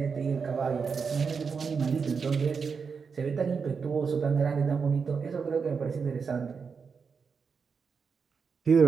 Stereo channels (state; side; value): quieter; left; 5.6 dB